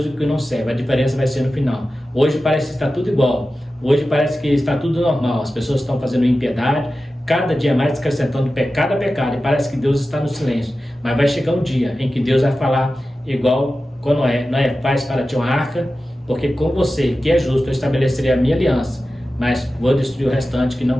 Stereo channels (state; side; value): normal; both; correlation 0.94